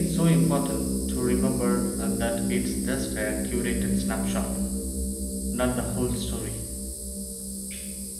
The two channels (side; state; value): both; identical; correlation 1.00